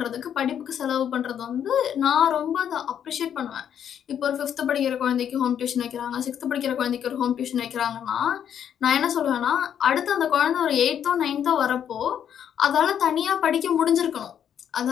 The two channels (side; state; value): right; quieter; 9.1 dB